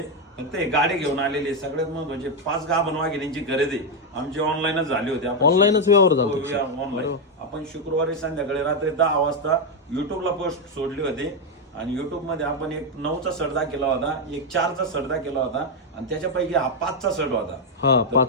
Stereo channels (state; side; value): normal; both; correlation 0.03